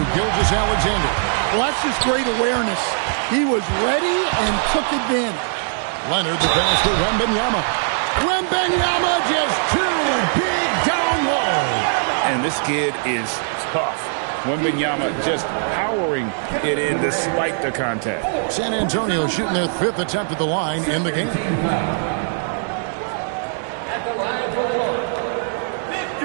Gilgeous-Alexander. Well, that's just great awareness. He was ready and took advantage. Leonard, the pass to Wembanyama. Wembanyama just too big down low. And this kid is tough. Wembanyama just powering it in despite the contact. San Antonio shooting their 5th attempt at the line in the game. At the line for one,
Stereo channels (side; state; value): left; silent; digital silence